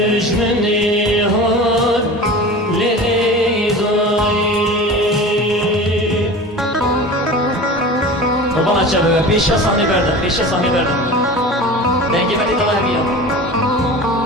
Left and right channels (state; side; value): normal; both; correlation 0.35